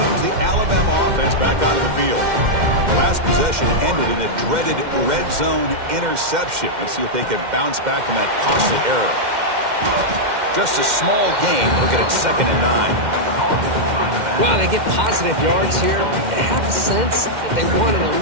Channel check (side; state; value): left; late; 2.1 ms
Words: the Alabama offense back onto the field. The last possession ended in a dreaded red zone interception. Let's see if they can bounce back from that costly error. Just a small gain. Look at it, 2nd and 9. Wow, they get positive yards here. You have a sense that they wanted a